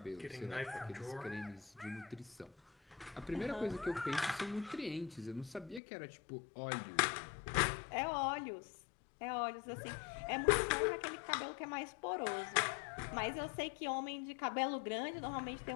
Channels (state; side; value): drops out; right; at 5.8 s